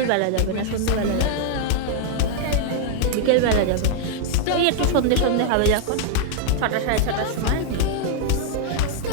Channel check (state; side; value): different; both; correlation -0.01